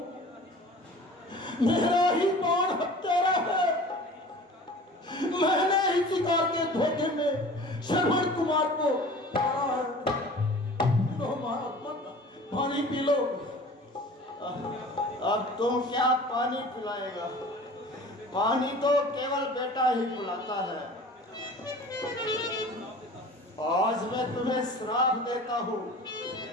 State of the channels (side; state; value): both; normal; correlation 0.42